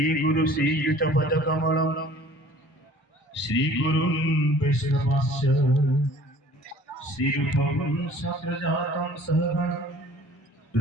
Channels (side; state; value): both; normal; correlation 0.50